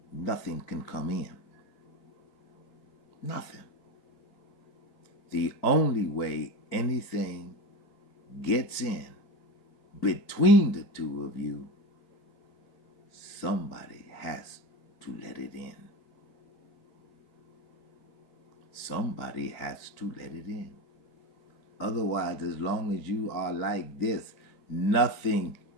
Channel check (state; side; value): late; right; 4.6 ms